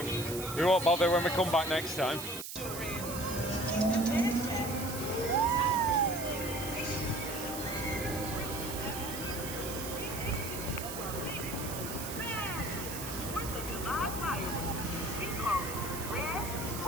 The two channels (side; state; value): right; noise; hiss, 8 dB below the sound